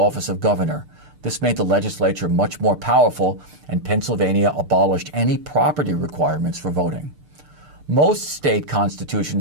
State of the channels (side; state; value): left; late; 6.7 ms